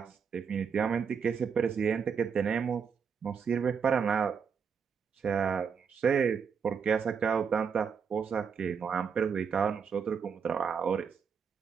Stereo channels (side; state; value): left; quieter; 6.5 dB